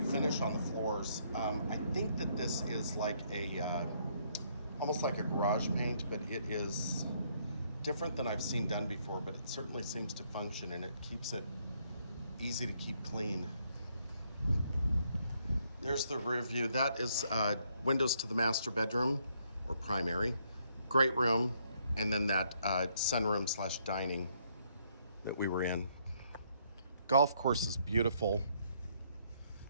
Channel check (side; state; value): both; inverted; correlation -0.71